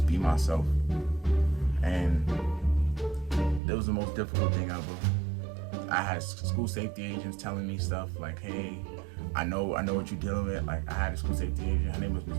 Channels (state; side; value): drops out; left; at 3.6 s